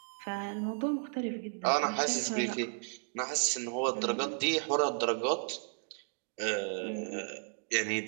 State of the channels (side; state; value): left; silent; digital silence